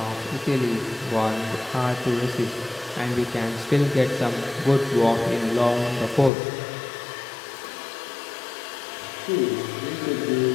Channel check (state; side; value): drops out; right; at 6.3 s